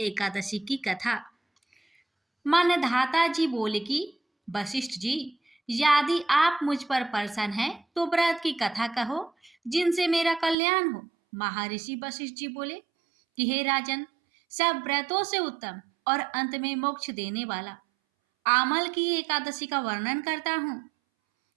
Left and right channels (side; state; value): left; drops out; at 10.6 s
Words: की कथा। मान्यधाता जी बोले कि वशिष्ठ जी, यदि आप मुझ पर प्रसन्न हैं तो व्रत की कथा कहो जिनसे मेरा कल्याण हो। महर्षि वशिष्ठ जी बोले कि हे राजन, सब व्रतों से उत्तम और अंत में मोक्ष देने वाला आमल की एकादशी का वर्णन करता हूँ।